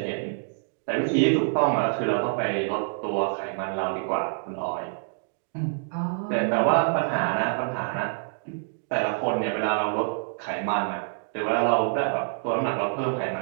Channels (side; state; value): left; silent; digital silence